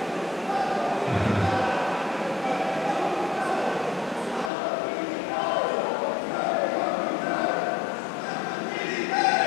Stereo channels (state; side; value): drops out; right; at 4.5 s